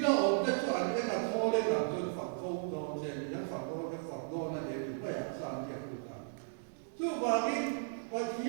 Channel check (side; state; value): left; silent; digital silence